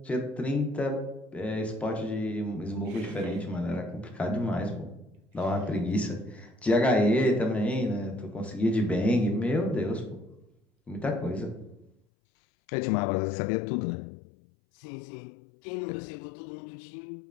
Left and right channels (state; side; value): drops out; right; at 12.0 s